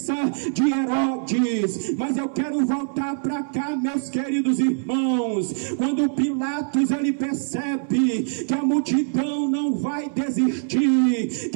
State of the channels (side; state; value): left; silent; 60 dB below the other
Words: de Herodes. Mas eu quero voltar para cá, meus queridos irmãos. Quando Pilatos ele percebe que a multidão não vai desistir,